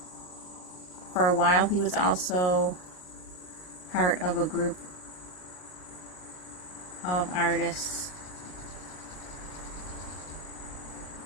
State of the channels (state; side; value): late; right; 39 ms